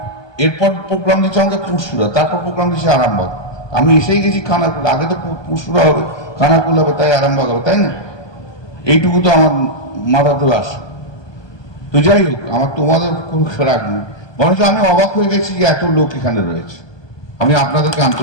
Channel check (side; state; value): right; late; 1.2 ms